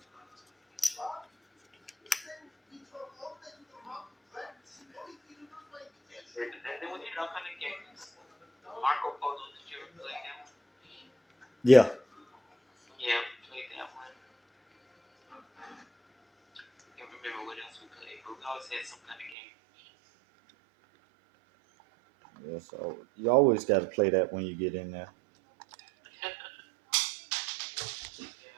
then we did all kind of games. Marco Polo, did you ever play that one? Yeah. Yeah, we played that one. I can't remember what else we played, but we always had some kind of game. Yeah. So you always got to play that when you get in there. Yeah.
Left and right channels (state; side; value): drops out; left; at 19.4 s